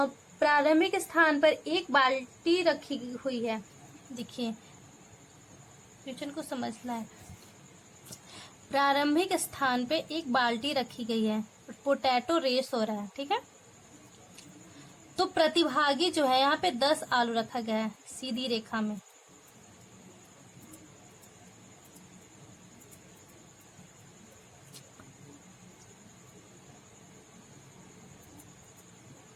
स्थान पर एक बाल्टी रखी हुई है। देखिए क्वेश्चन को समझना है। प्रारंभिक स्थान पे एक बाल्टी रखी गई है, पोटैटो रेस हो रहा है, ठीक है। तो प्रतिभागी जो है यहाँ पे 10 आलू रखा गया है सीधी रेखा में।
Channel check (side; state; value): both; identical; correlation 1.00